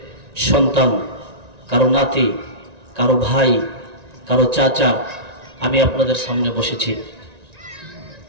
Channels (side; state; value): left; late; 1.9 ms